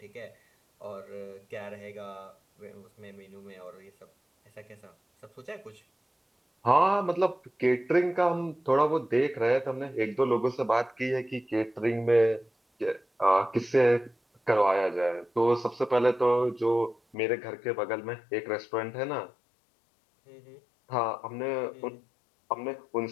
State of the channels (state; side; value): drops out; right; at 17.2 s